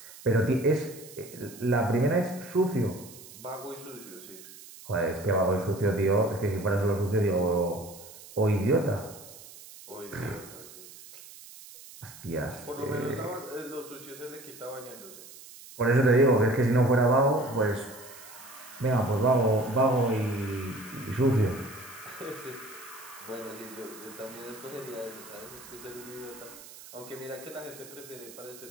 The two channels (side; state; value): right; noise; hiss, 18 dB below the sound